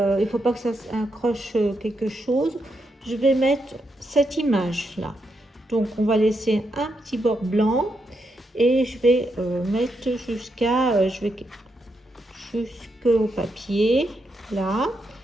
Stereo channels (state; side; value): normal; both; correlation 0.82